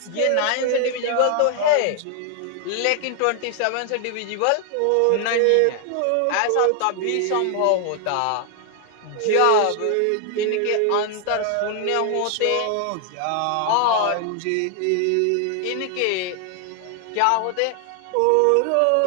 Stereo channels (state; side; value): different; both; correlation 0.00